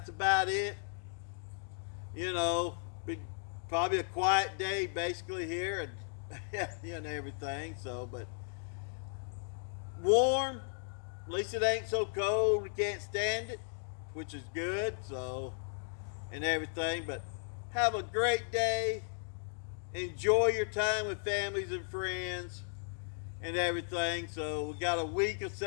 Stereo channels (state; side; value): silent; right; digital silence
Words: about it. Probably a quiet day basically here and everything. So, but warm. At least it ain't so cold. We can't stand it, which is good. So, and everything, but have a great day. Enjoy your time with families and friends and everything. So we got a week of